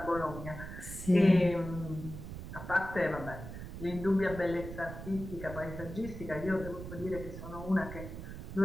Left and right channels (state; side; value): noise; right; rumble, 9 dB below the sound